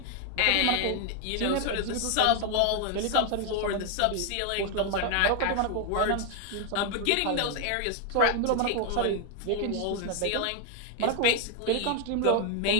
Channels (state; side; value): different; both; correlation 0.01